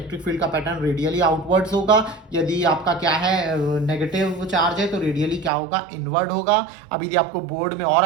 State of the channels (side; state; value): left; drops out; at 5.5 s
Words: फील्ड का पैटर्न रेडियली आउटवर्ड्स होगा। यदि आपका क्या है नेगेटिव चार्ज है तो रेडियली क्या होगा, इनवर्ड होगा। अब यदि आपको बोर्ड में और